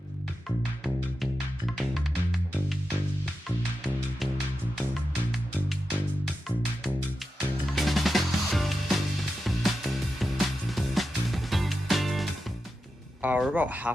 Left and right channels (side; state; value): both; normal; correlation 0.90